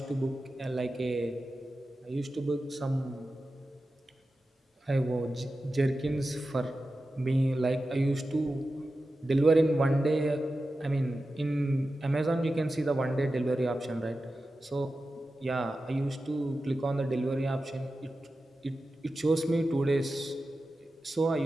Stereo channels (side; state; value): both; normal; correlation 0.93